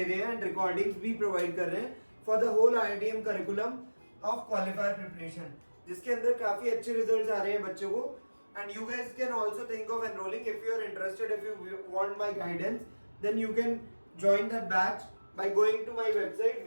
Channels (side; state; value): both; inverted; correlation -1.00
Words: रहे हैं एंड रिकॉर्डिंग्स भी प्रोवाइड कर रहे हैं for the whole IITM curriculum of qualifier preparation, जिसके अंदर काफी अच्छे रिजल्ट्स आ रहे हैं बच्चों को. And you guys can also think of enrolling if you are interested. If you want my guidance then you can join that batch by going to my website